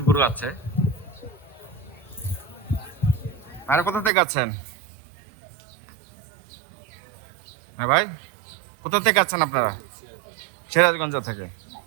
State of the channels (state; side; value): drops out; left; at 4.1 s